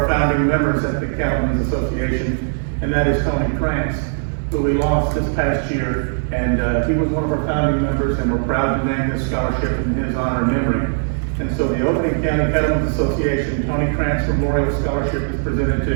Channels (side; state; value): left; silent; digital silence